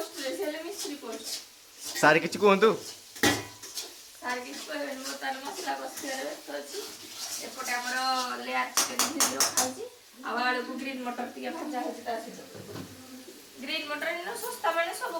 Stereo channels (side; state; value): both; identical; correlation 1.00